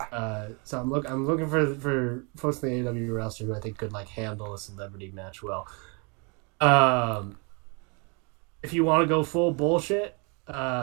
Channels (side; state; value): left; quieter; 33.1 dB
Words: So I'm looking for folks in the AEW roster who I think could like handle a celebrity match well. If you want to go full bullshit,